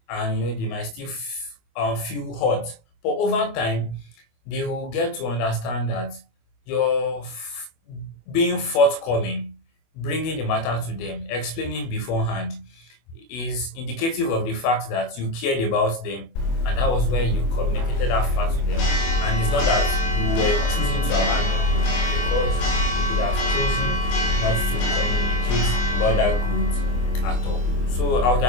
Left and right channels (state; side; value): late; right; 24 ms